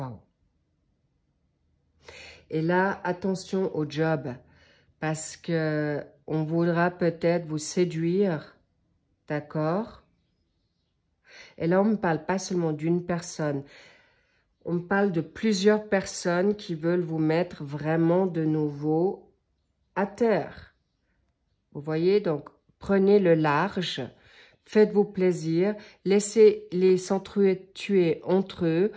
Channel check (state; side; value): identical; both; correlation 1.00